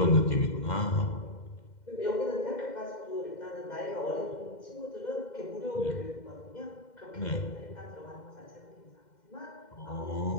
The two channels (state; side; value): late; right; 2.1 ms